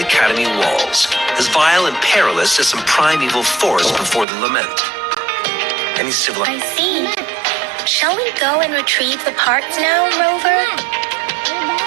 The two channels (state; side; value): drops out; left; at 4.2 s